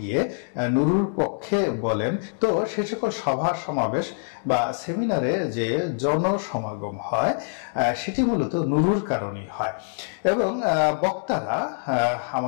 নুরুর পক্ষে বলেন, তো সে সকল সভা সমাবেশ বা সেমিনারে যে জনসমাগম হয় সেটি মূলত নুরুর কারণেই হয় এবং বক্তারা,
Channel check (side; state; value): right; silent; digital silence